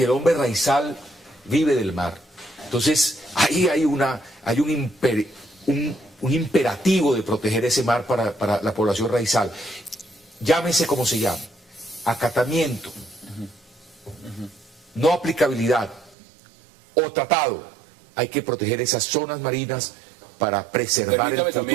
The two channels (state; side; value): drops out; left; at 16.2 s